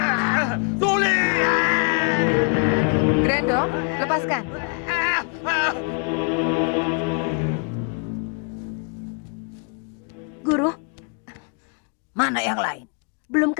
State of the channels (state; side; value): quieter; right; 38.1 dB